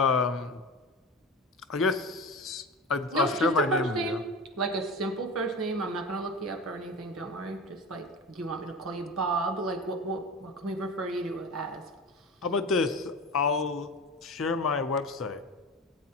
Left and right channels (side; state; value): both; normal; correlation 0.31